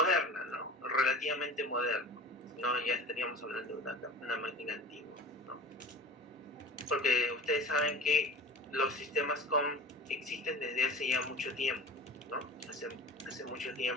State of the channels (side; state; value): both; normal; correlation 0.37